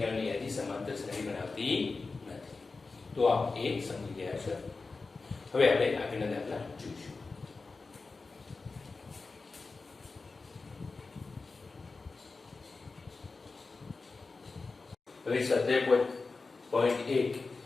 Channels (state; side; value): quieter; right; 4.0 dB